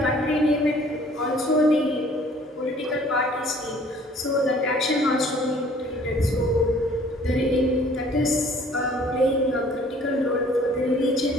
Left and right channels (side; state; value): both; normal; correlation 0.55